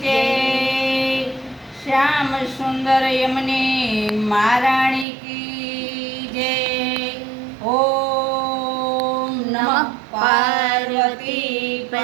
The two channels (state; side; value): drops out; left; at 5.1 s